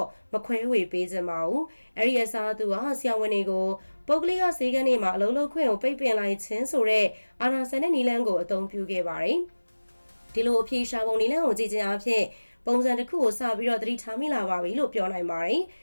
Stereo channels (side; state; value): both; inverted; correlation -1.00